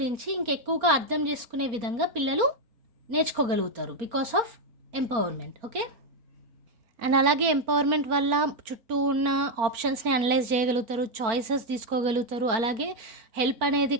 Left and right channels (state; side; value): late; left; 4.4 ms